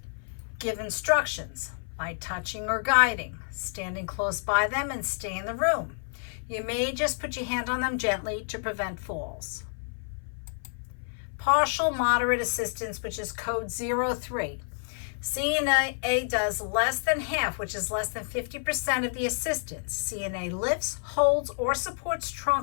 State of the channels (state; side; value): silent; right; 56 dB below the other